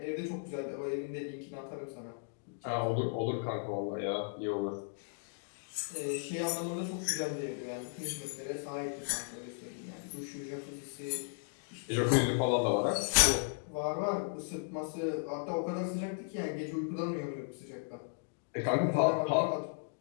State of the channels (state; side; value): silent; right; digital silence